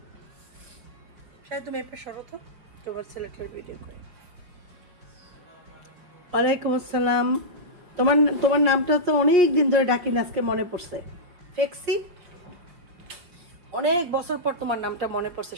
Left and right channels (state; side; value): late; left; 5.6 ms